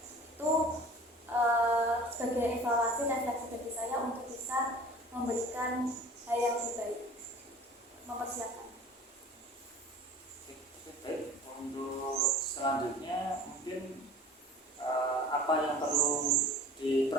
Itu sebagai evaluasi refleksi bagi saya untuk bisa memberikan hal yang lebih baik, mempersiapkan. Baik, untuk selanjutnya mungkin apa yang perlu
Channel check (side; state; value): both; normal; correlation 0.44